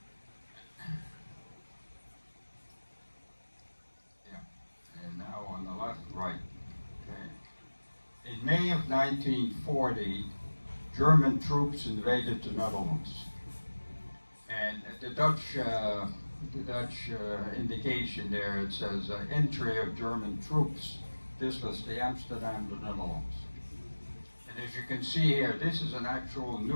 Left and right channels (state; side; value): inverted; both; correlation -1.00